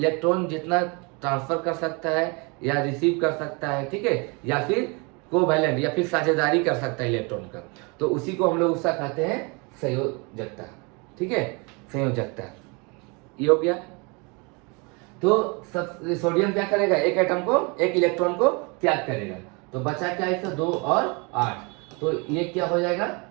जितना ट्रांसफर कर सकता है या रिसीव कर सकता है, ठीक है, या फिर कोवैलेंट या फिर साझेदारी कर सकता है इलेक्ट्रॉन का, तो उसी को हम लोग उसका कहते हैं संयोजकता, ठीक है, संयोजकता। ये हो गया। तो सोडियम क्या करेगा 1 एटम को 1 इलेक्ट्रॉन को त्याग करेगा, तो बचा क्या इसका 2 और 8, तो ये क्या हो जाएगा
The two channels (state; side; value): quieter; left; 30.3 dB